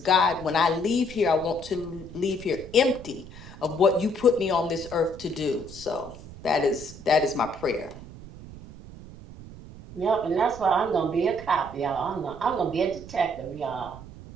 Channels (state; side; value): noise; right; rumble, 16 dB below the sound